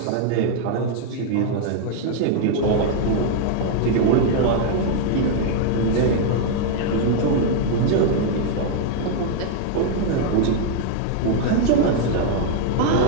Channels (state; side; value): different; both; correlation 0.00